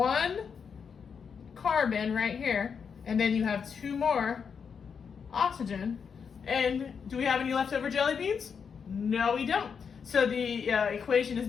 carbon right here, and then you have 2 more oxygen. And do we have any leftover jelly beans? No, we don't. So the equation is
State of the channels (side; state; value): right; quieter; 6.4 dB